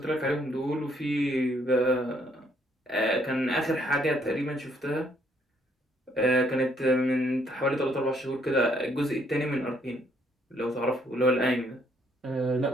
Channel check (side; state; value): both; normal; correlation 0.68